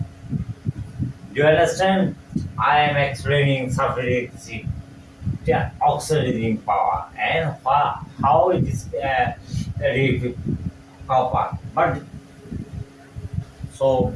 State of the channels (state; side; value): identical; both; correlation 1.00